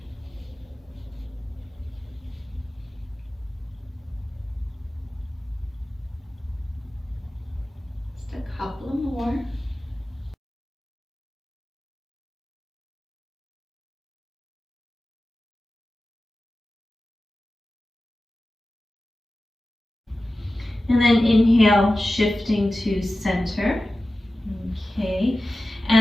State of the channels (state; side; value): normal; both; correlation 0.95